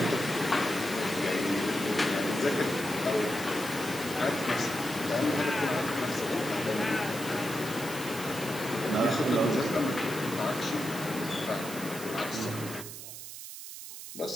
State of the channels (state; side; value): noise; right; hiss, 11 dB below the sound